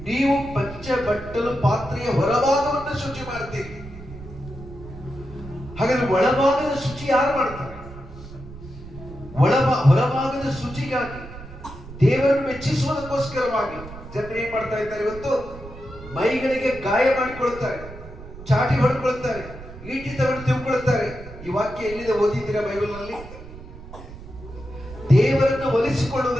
ನೀವು ಪಂಚ ಬಟ್ಟಲು ಪಾತ್ರೆಯ ಹೊರಭಾಗವನ್ನು ಶುಚಿ ಮಾಡ್ತೀರಿ. ಹಾಗಾದ್ರೆ ಒಳಭಾಗದ ಶುಚಿ ಯಾರು ಮಾಡ್ತಾರೆ? ಹೊರಭಾಗದ ಶುಚಿಗಾಗಿ, ದೇವರನ್ನು ಮೆಚ್ಚಿಸುವುದಕ್ಕೋಸ್ಕರವಾಗಿ ಜನರು ಏನ್ ಮಾಡ್ತಾ ಇದ್ದಾರೆ? ಇವತ್ತು ಮೈಗಳಿಗೆ ಗಾಯ ಮಾಡಿಕೊಳ್ತಾರೆ, ಚಾಟಿ ಹೊಡ್ಕೊಳ್ತಾರೆ, ಈಟಿ ತಗೊಂಡು ತಿಳ್ಕೊಳ್ತಾರೆ. ಈ ವಾಕ್ಯ ಎಲ್ಲಿದೆ ಓದಿದ್ದೀರಾ ಬೈಬಲ್ ನಲ್ಲಿ? ದೇವರನ್ನು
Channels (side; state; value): right; noise; rumble, 15 dB below the sound